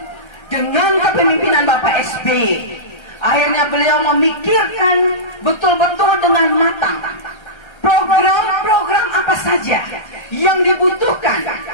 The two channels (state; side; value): late; right; 1.3 ms